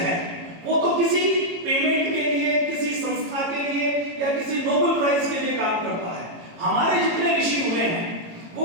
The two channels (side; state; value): left; late; 18 ms